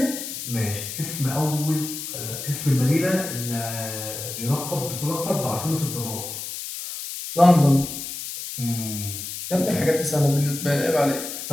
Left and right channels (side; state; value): left; noise; hiss, 7 dB below the sound